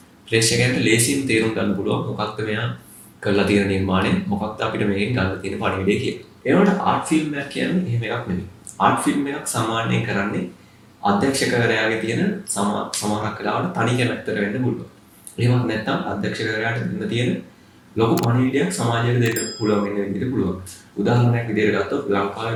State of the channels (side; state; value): both; identical; correlation 1.00